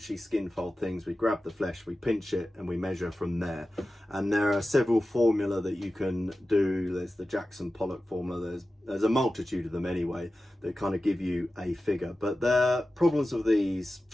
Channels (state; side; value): normal; both; correlation 0.94